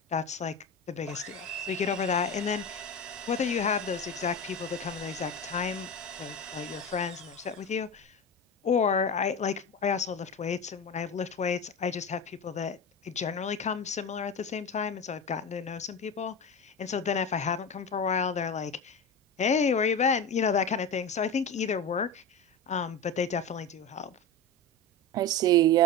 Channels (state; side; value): normal; both; correlation 0.24